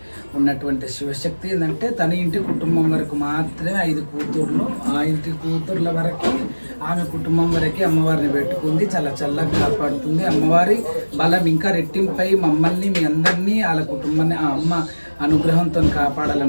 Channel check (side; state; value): both; inverted; correlation -1.00